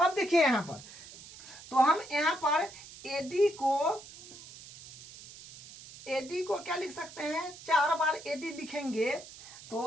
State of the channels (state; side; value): noise; right; hiss, 17 dB below the sound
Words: देखिए यहाँ पर, तो हम यहाँ पर एडी को क्या लिख सकते हैं, 4 बार एडी लिखेंगे,